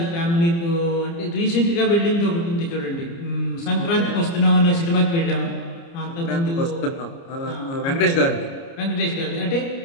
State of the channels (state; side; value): late; right; 29 ms